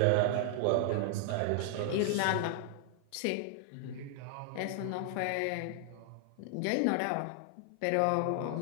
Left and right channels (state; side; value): different; both; correlation 0.00